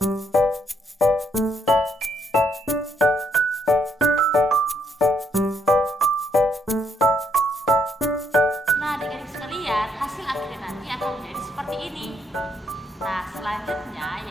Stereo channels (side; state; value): both; normal; correlation 0.74